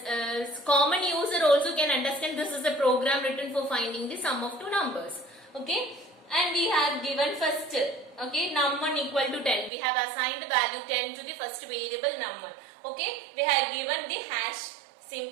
common user also can understand this is a program written for finding the sum of two numbers, okay. And we have given first, okay, num1 equal to 10. We have assigned value 10 to the first variable num1, okay. We have given the hash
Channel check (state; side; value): drops out; left; at 9.7 s